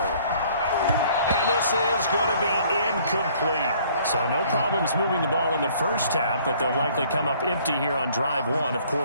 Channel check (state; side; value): inverted; both; correlation -0.58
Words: this is going to be incomplete. So no problems moving the ball in the first half, but they'll likely come up empty here on drive 1 of